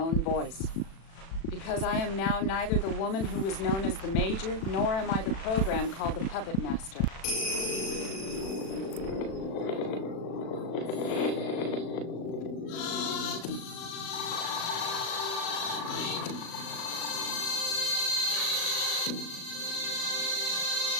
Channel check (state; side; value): late; right; 36 ms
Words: voice. Because I am now neither the woman who was known as the Major, nor am I the program called the Puppet Master.